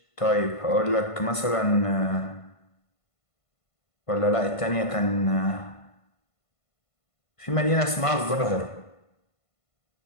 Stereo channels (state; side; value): late; right; 1.5 ms